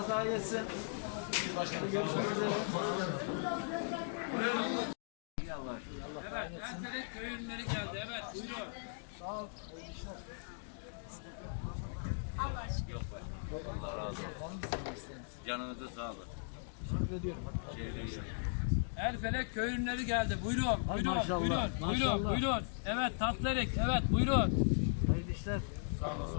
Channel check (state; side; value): silent; right; digital silence